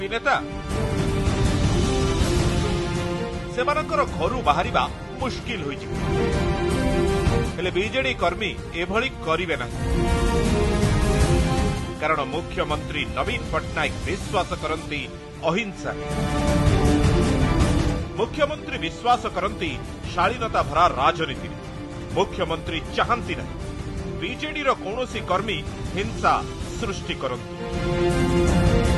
नेता। सेमानकर घरू बाहरिबा मुश्किल होई जिवो। हेले बीजेडी कर्मी एभली करिवे ना, कारण मुख्यमंत्री नवीन पट्टनायक विश्वास करंती अहिंसा। मुख्यमंत्री विश्वास करंती शालीनता भरा राजनीति। मुख्यमंत्री चाहती नहीं बीजेडी रो कौनसी कर्मी हिंसा सृष्टि करंतु।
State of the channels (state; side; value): identical; both; correlation 1.00